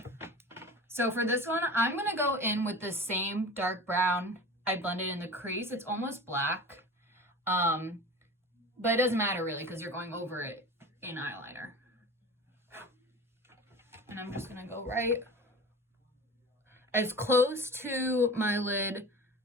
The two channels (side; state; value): both; normal; correlation 0.35